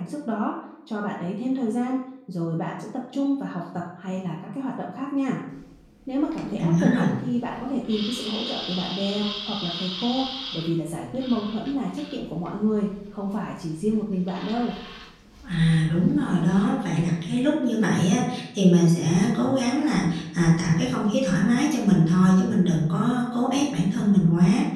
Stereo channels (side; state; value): both; identical; correlation 1.00